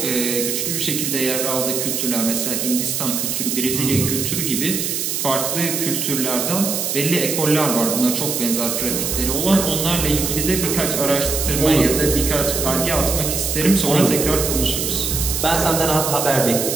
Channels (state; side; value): noise; right; hiss, 1 dB below the sound